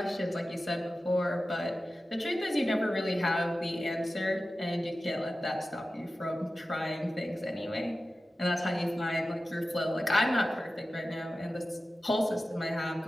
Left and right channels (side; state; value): both; normal; correlation 0.94